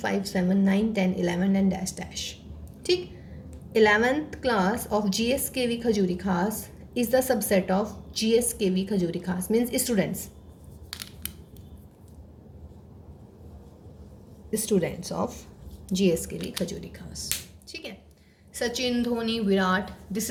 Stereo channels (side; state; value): both; identical; correlation 1.00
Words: 7 9 10 11 and dash dash, ठीक। 11th class of GSKV Khajuri Khas is the subset of GSKV Khajuri Khas, means students of GSKV Khajuri Khas, ठीक है। Sachin, Dhoni, Virat, this